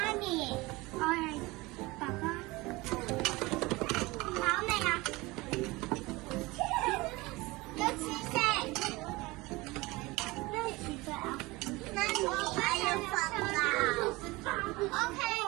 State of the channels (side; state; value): left; quieter; 22.1 dB